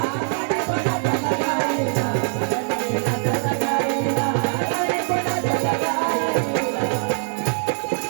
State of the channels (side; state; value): left; silent; 57 dB below the other